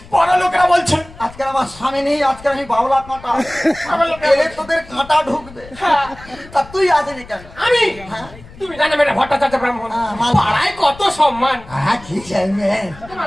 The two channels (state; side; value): noise; left; rumble, 20 dB below the sound